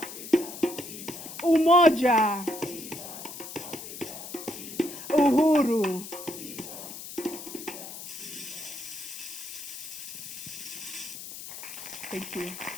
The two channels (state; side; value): noise; left; hiss, 11 dB below the sound